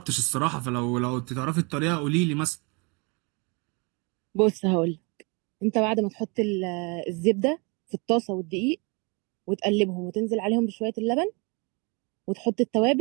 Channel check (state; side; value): quieter; left; 30.9 dB